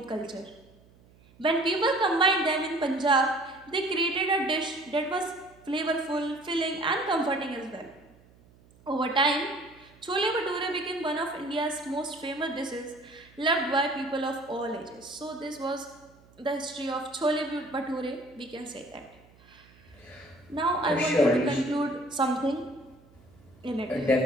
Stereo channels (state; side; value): noise; right; hum, 27 dB below the sound